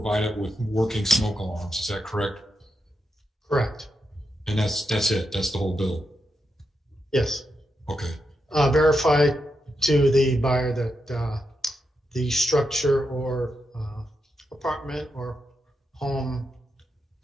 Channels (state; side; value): normal; both; correlation 0.85